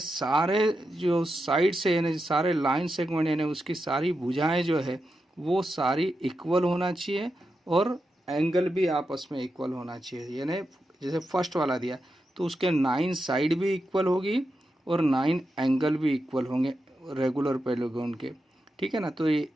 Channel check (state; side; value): normal; both; correlation 0.88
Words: जो साइड से यानी सारे लाइन सेगमेंट यानी उसकी सारी भुजाएं जो है वो सारी इक्वल होना चाहिए और एंगल भी आपस में इक्वल होना चाहिए। यानी जैसे फर्स्ट वाला दिया तो उसके 9 साइड भी इक्वल होगी और 9 एंगल भी इक्वल होंगे रेगुलर पॉलीगॉन के, ठीक है ना। तो ये